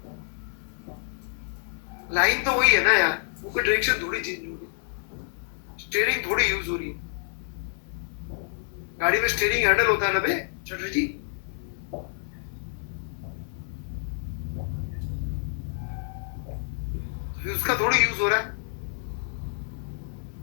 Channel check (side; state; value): right; silent; digital silence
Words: लाइन तो वही है ना यार, वो कोई डायरेक्शन थोड़ी चेंज हो रही, स्टीयरिंग थोड़ी यूज हो रही है। गाड़ी में स्टीयरिंग हैंडल होता है ना बे चटर्जी जी, उसका थोड़ी यूज हो रहा है।